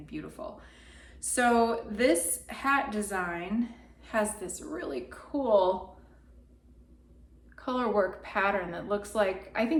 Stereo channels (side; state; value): both; identical; correlation 1.00